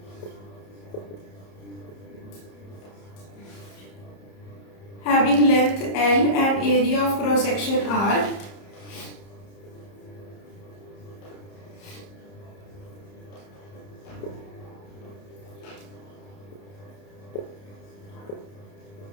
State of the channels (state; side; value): late; right; 30 ms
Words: having length L and area of cross section R